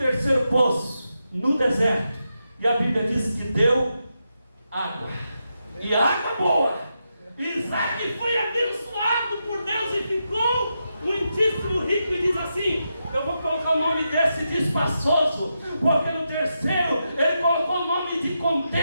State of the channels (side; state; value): both; inverted; correlation -0.86